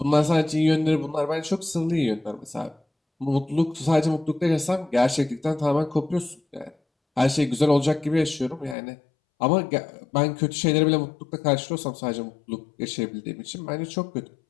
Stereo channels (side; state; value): right; drops out; at 8.8 s